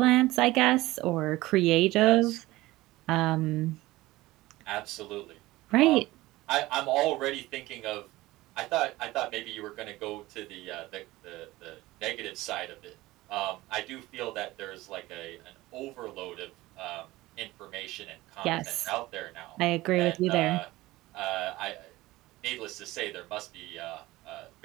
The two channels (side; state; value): left; quieter; 18.6 dB